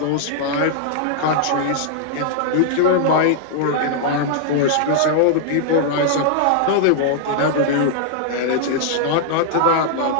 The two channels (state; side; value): different; both; correlation -0.01